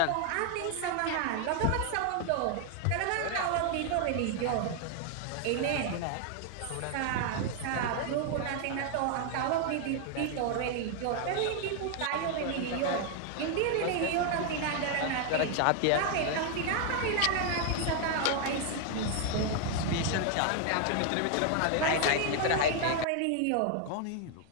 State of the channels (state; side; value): different; both; correlation 0.00